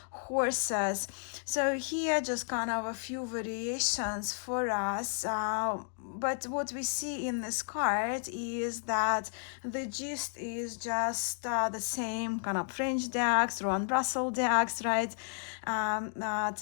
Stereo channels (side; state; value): right; silent; digital silence